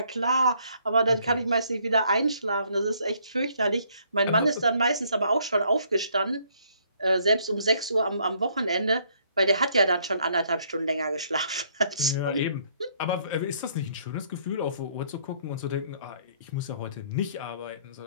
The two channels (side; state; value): both; inverted; correlation -0.66